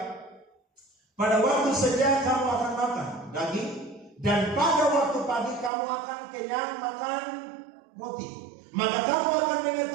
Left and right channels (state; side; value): drops out; left; at 5.7 s